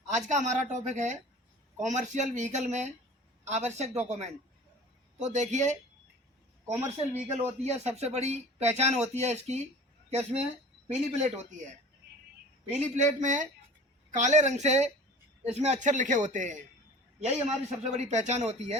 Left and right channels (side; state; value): both; normal; correlation 0.42